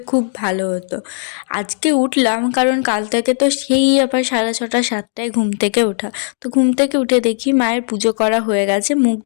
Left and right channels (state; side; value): silent; right; digital silence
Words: খুব ভালো হতো। আজকে উঠলাম কারণ কাল থেকে তো সেই আবার 6:30 7টায় ঘুম থেকে ওঠা। তো ঘুম থেকে উঠে দেখি মায়ের পুজো করা হয়ে গেছে, মুখ